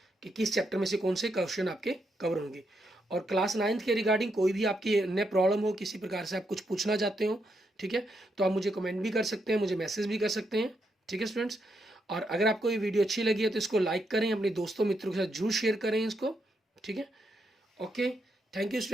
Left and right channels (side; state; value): both; normal; correlation 0.80